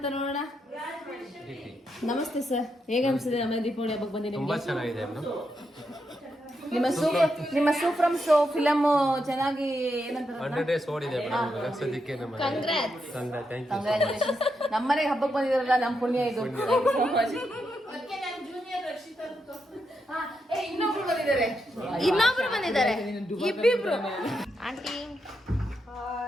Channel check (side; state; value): both; normal; correlation 0.83